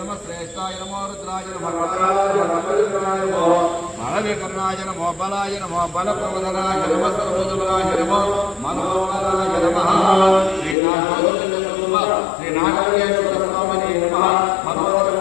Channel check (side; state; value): right; drops out; at 10.8 s